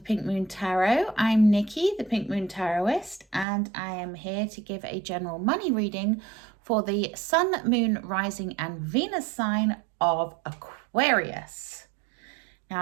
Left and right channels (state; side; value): drops out; left; at 3.5 s